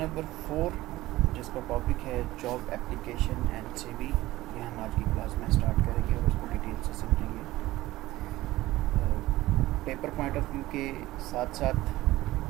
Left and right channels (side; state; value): left; quieter; 17.1 dB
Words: 4 جس کا ٹاپک ہے جاب اپلیکیشن اینڈ سی وی. یہ ہم آج کی کلاس میں اسٹارٹ کریں گے اور اس کو ڈیٹیل سے سمجھیں گے. پیپر پوائنٹ آف ویو کے ساتھ ساتھ